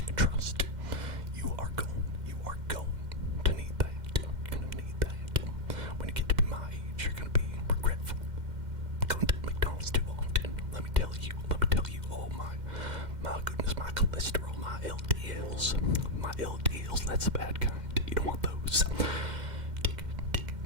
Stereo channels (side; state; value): left; late; 2.1 ms